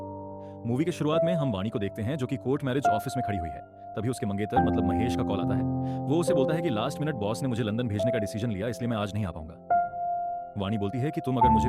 मूवी के शुरुआत में हम वाणी को देखते हैं जो कि कोर्ट मैरिज ऑफिस में खड़ी हुई है। तभी उसके मंगेतर मतलब महेश का कॉल आता है। वो उसे बोलता है कि लास्ट मिनट बॉस ने मुझे लंदन भेजने का डिसीजन लिया, इसलिए मैं आज नहीं आ पाऊंगा। वाणी बोलती है कि तुम अगर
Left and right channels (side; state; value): both; identical; correlation 1.00